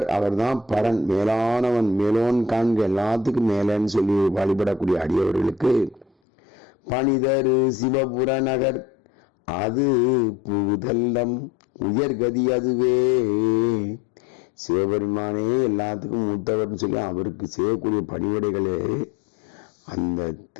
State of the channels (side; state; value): right; drops out; at 6.1 s